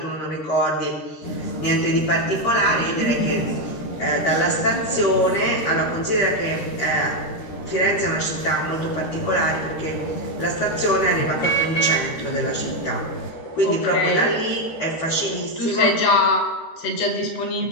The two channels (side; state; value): right; late; 13 ms